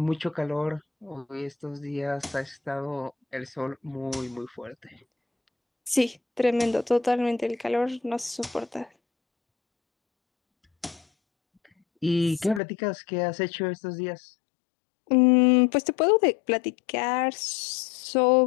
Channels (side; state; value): right; drops out; at 12.6 s